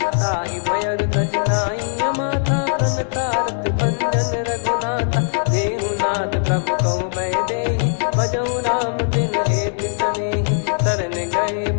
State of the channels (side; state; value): right; silent; digital silence